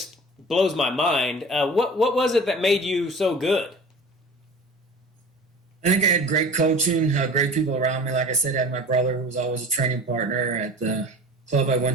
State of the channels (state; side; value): normal; both; correlation 0.39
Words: blows my mind. What was it that made you so good? I think I had great coaching, great people around me. Like I said, I had my brother who was always a training partner at the club I